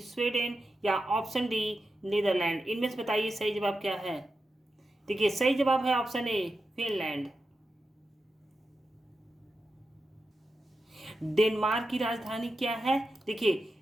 Sweden या ऑप्शन डी नीदरलैंड। इनमें से बताइए सही जवाब क्या है। देखिए, सही जवाब है ऑप्शन ए फिनलैंड। डेनमार्क की राजधानी क्या है? देखिए,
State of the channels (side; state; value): both; normal; correlation 0.89